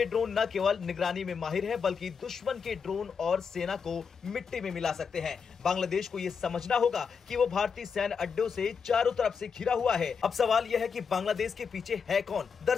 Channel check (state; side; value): quieter; right; 6.0 dB